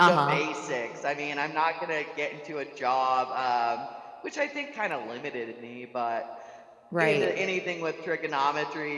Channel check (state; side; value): identical; both; correlation 1.00